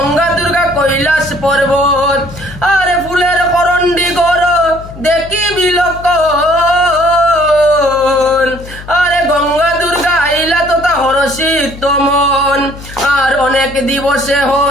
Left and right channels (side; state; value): left; noise; hum, 15 dB below the sound